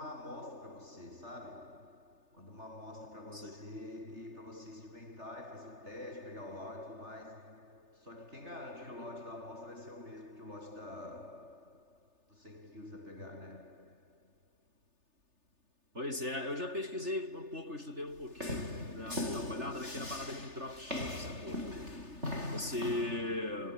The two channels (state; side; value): late; left; 3.3 ms